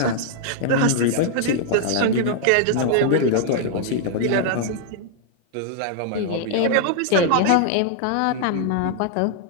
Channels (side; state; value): both; different; correlation -0.01